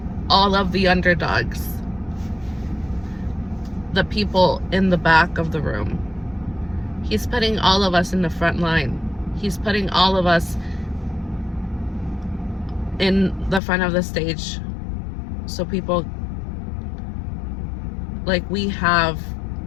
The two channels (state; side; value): drops out; right; at 13.6 s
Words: all of the underdogs, the people in the back of the room. He's putting all of us in the front line. He's putting all of us in the front of the stage. So people, like we have,